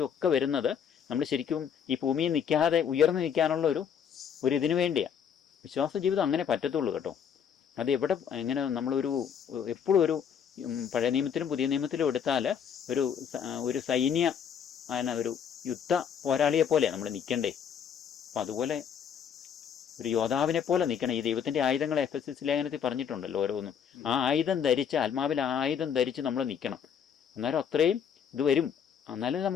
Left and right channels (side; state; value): right; quieter; 7.9 dB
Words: ഒക്കെ വരുന്നത് നമ്മൾ ശരിക്കും ഈ ഭൂമിയിൽ നിൽക്കാതെ ഉയർന്നു നിൽക്കാനുള്ള ഒരു ഇതിനു വേണ്ടിയാണ്. വിശ്വാസ ജീവിതം അങ്ങനെ പറ്റത്തുള്ളൂ കേട്ടോ. അത് എങ്ങനെ നമ്മളൊരു എപ്പോഴും ഒരു പഴയ നിയമത്തിലും പുതിയ നിയമത്തിലും എടുത്താൽ ഒരു സൈന്യ ഒരു യുദ്ധ പോരാളിയെ പോലെയാണ് നമ്മൾ നിൽക്കണ്ടേ. അപ്പം അതുപോലെ ഒരു യോദ്ധാവിനെ പോലെ നിൽക്കണം. ഈ ദൈവത്തിൻ്റെ ആയുധങ്ങൾ എഫെസ്യസ് ലേഖനത്തിൽ പറഞ്ഞിട്ടുണ്ടല്ലോ ഓരോന്നും. ആ ആയുധം ധരിച്ച്, ആത്മാവിൽ ആയുധം ധരിച്ച് നമ്മൾ നിൽക്കണം. അന്നേരം അത്രയും ഇത് വരും. എന്നാലും